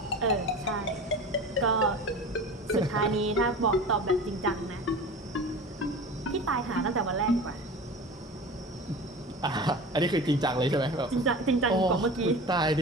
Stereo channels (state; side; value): normal; both; correlation 0.34